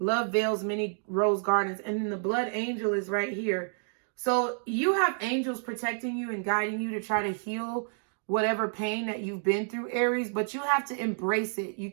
veils many rose gardens. And then the Blood Angel is right here. So you have angels protecting you and guiding you to try to heal whatever pain that you've been through, Aries. But you have to embrace it. You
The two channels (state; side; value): silent; left; 58 dB below the other